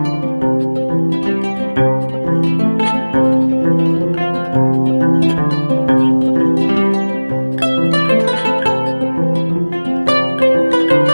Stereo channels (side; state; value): both; inverted; correlation -1.00